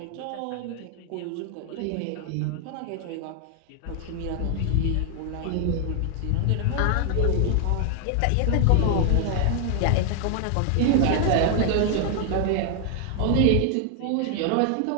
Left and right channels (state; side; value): different; both; correlation 0.00